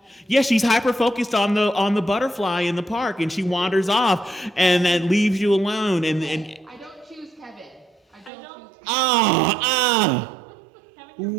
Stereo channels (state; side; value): drops out; left; at 8.3 s